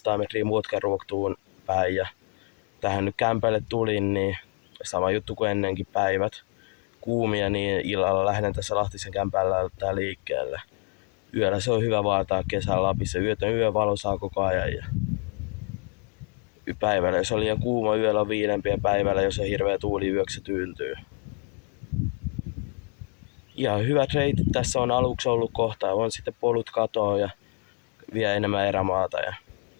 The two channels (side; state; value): right; quieter; 35.2 dB